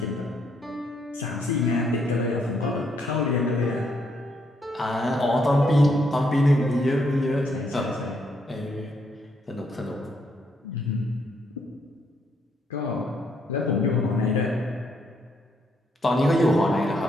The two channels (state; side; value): normal; both; correlation 0.73